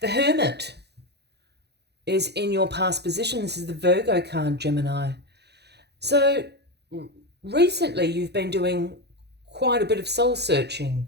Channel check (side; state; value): left; late; 0.48 ms